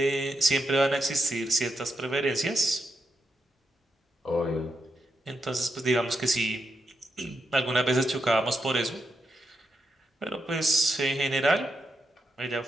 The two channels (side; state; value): both; normal; correlation 0.84